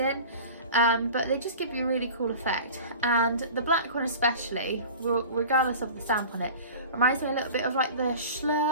but they just give you a really cool effect. And the black one especially, regardless of the stamp on it, reminds me a little bit of like the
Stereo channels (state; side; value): inverted; both; correlation -0.38